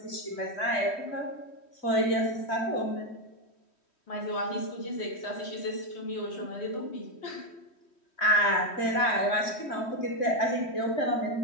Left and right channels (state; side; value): late; right; 3.1 ms